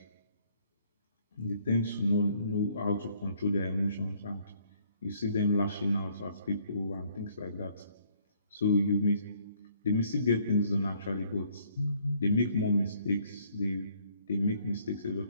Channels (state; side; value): inverted; both; correlation -0.63